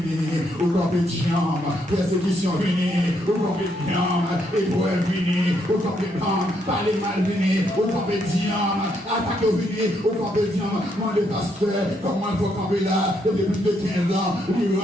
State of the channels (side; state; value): both; normal; correlation 0.75